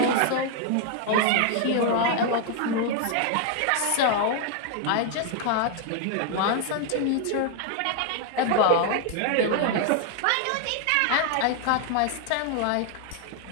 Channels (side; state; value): both; different; correlation 0.00